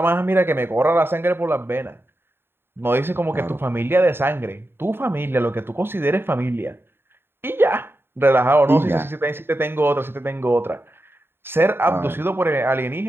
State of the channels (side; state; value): left; late; 0.11 ms